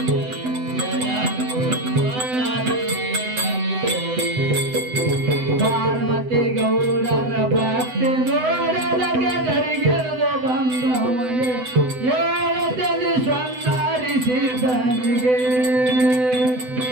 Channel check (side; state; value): left; late; 7.9 ms